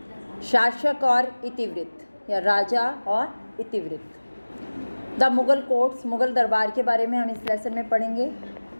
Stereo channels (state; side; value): inverted; both; correlation -1.00